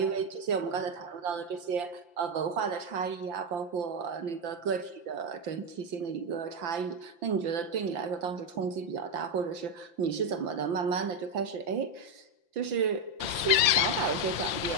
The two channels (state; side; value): late; left; 5.8 ms